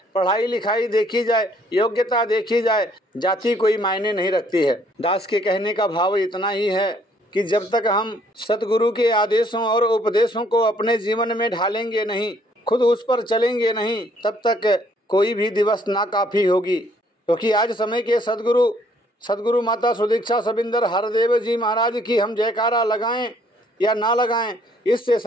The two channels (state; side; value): normal; both; correlation 0.64